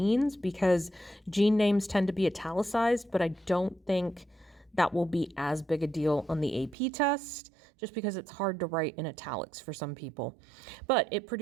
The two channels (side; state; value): left; drops out; at 6.8 s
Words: because gene names tend to be italicized, but I don't think that will be as big a deal on the AP test, just because it's hard to write in italics for some people. But it